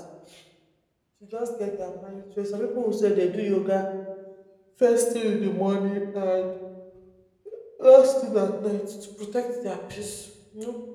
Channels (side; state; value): both; identical; correlation 1.00